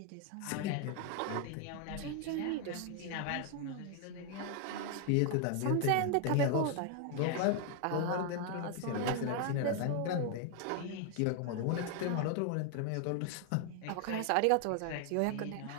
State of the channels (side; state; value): both; different; correlation 0.00